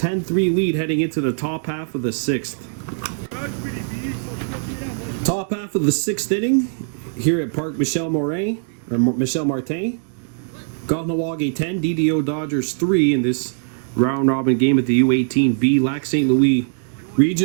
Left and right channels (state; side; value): silent; left; digital silence